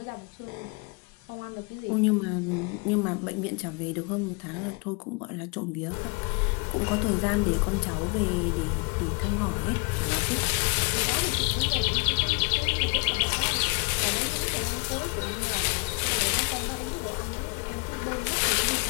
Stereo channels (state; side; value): quieter; right; 32.0 dB